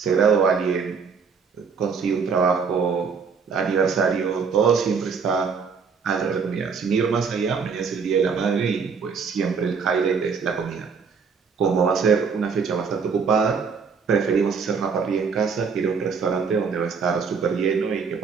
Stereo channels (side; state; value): left; quieter; 5.7 dB